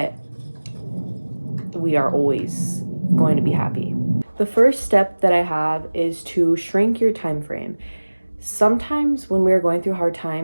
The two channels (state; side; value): inverted; both; correlation -1.00